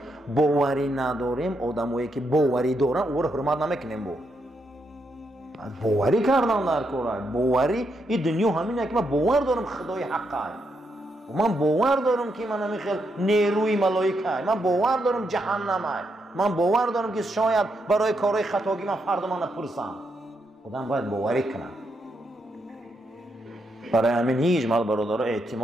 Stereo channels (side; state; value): both; normal; correlation 0.80